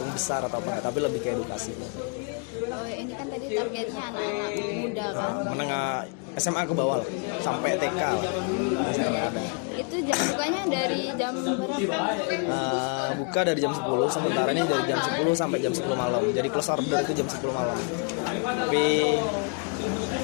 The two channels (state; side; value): quieter; right; 38.1 dB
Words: besar atau apa, tapi lebih ke edukasi. Oh ini kan tadi targetnya anak-anak muda kan? Anak SMA ke bawah sampai TK. Itu jam bukanya dari jam berapa? Buka dari jam 10, sementara ini dari jam 10 sampai jam 10 malam. Jadi close order itu jam 10 malam. Tapi